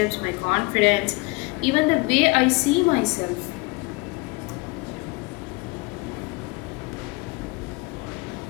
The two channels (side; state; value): right; quieter; 26.1 dB